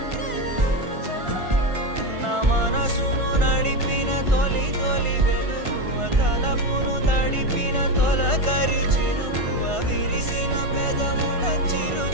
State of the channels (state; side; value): late; left; 1.5 ms